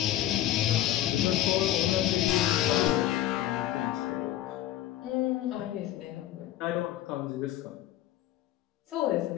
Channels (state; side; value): quieter; right; 13.3 dB